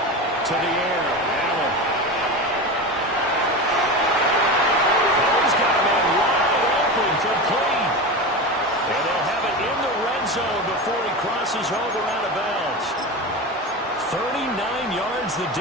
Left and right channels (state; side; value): normal; both; correlation 0.24